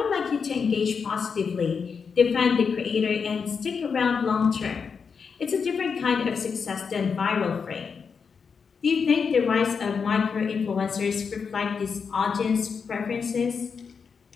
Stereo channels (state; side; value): quieter; right; 5.9 dB